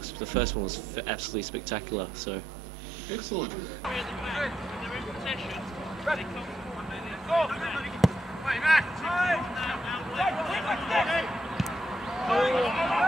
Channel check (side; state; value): both; normal; correlation 0.81